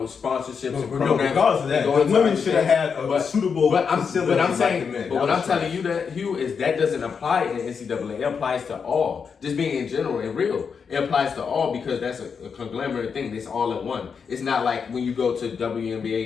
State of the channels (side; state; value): right; quieter; 6.1 dB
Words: and programs, regardless of that, and the going to women other should have things, had a suitable facility but I'm like saying, the men. but That what was I'm telling you that, Hugh, is that doesn't apply in NCAA. It applies to all. Just being in general and real. It applies to all because that's a conglomerate thing. It's all in one. It's not like when you go to